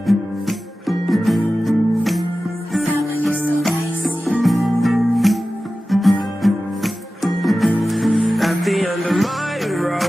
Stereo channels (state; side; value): normal; both; correlation 0.95